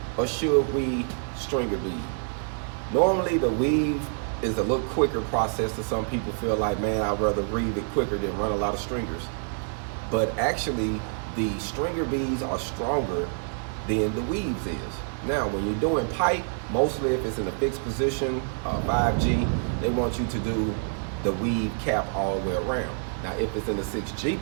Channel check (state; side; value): silent; left; digital silence